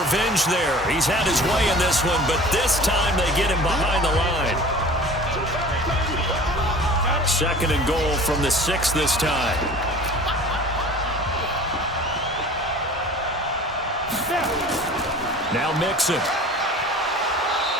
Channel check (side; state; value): both; normal; correlation 0.43